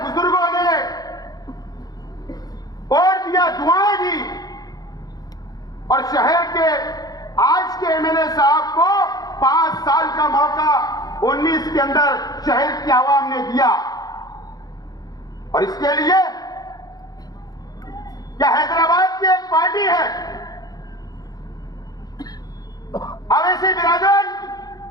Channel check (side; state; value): right; late; 0.19 ms